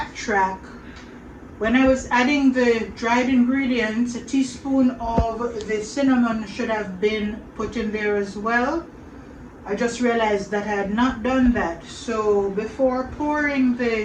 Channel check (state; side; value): identical; both; correlation 1.00